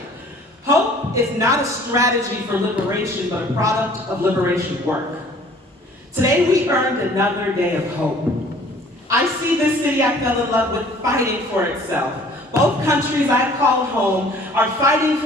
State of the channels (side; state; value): both; normal; correlation 0.53